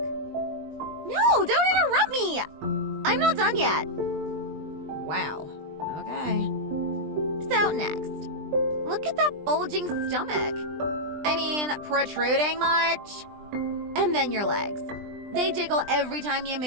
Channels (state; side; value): late; left; 20 ms